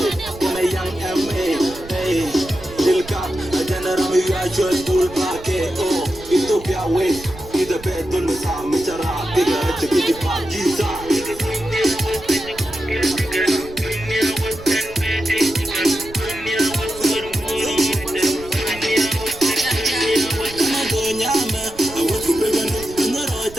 when a young MA, hey, Dilka, a general, you are just bull park, oh, Ethiopia way, in the bed, on the Sam, Mitara, bigger, to get the party.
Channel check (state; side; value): noise; right; rumble, 17 dB below the sound